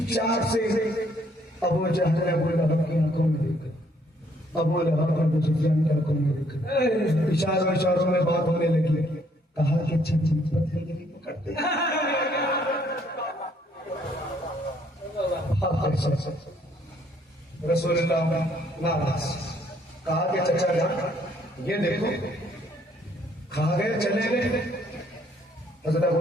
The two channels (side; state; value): both; normal; correlation 0.66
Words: से अबू जहल अबू लहब की आंखों में देखा, अबू लहब अबू सुफियान की आंखों में देखा, इशारों इशारों में बात होने लगी। कहा कि अच्छा पत्थर पकड़ते रसूलुल्लाह नाराज। कहा कि चचा जान ये देखो, खा गए चले गए। हज़रत अबू